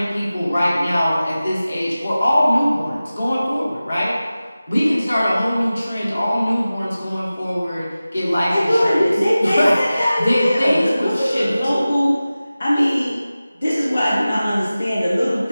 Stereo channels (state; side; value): inverted; both; correlation -0.96